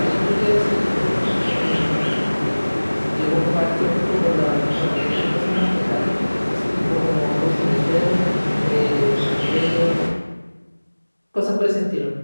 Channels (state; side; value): inverted; both; correlation -1.00